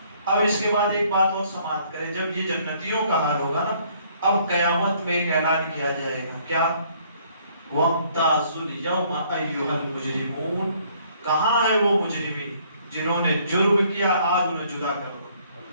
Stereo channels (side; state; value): both; inverted; correlation -0.63